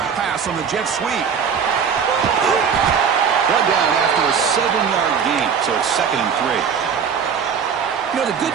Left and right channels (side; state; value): left; quieter; 6.8 dB